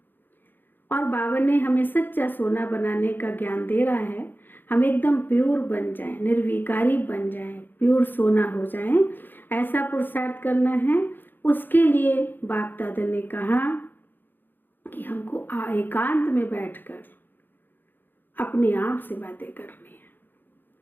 और बाबा ने हमें सच्चा सोना बनाने का ज्ञान दे रहा है। हम एकदम प्योर बन जाएं, निर्विकारी बन जाएं, प्योर सोना हो जाएं, ऐसा पुरुषार्थ करना है। उसके लिए बाप दादा ने कहा कि हमको एकांत में बैठकर अपने आप से बातें करनी है।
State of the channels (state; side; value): late; right; 0.093 ms